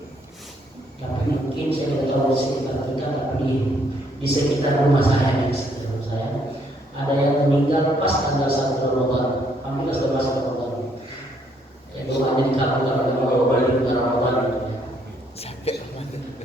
Tapi mungkin saya tidak tahu di sekitar kita, tapi di sekitar rumah saya, ada yang meninggal pas tanggal 1 Ramadan. Alhamdulillah sudah masuk Ramadan. Ya doanya dikabulkan oleh Allah balik ke Ramadan. Sampai Ramadan.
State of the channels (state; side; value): normal; both; correlation 0.69